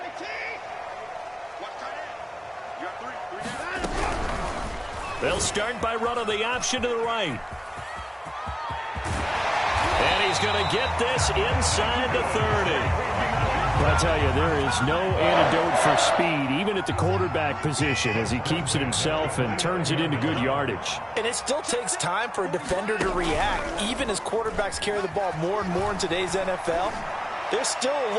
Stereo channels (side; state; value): both; identical; correlation 1.00